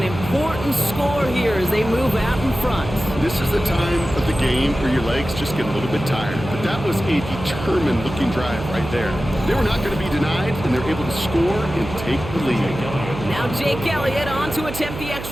important score here as they move out in front. This is the time of the game where your legs just get a little bit tired. But that was a determined-looking drive right there. They were not going to be denied, and they're able to score and take the lead. Now Jake Elliott on to attempt the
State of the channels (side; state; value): right; noise; hum, 9 dB below the sound